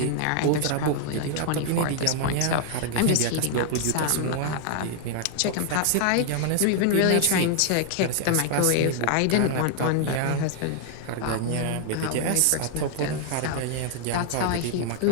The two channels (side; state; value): both; different; correlation 0.00